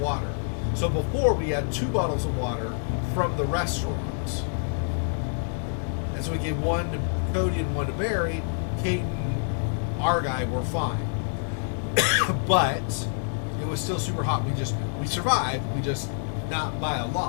So before we had 2 bottles of water from the restaurant. And so we gave 1 to Cody and 1 to Barry. Kate and our guy were fine. But it was still super hot. We survived, we just not by a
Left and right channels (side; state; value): right; silent; digital silence